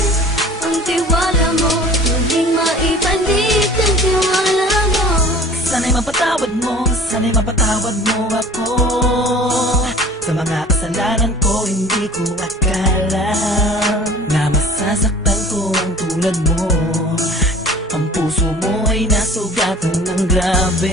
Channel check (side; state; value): both; normal; correlation 0.44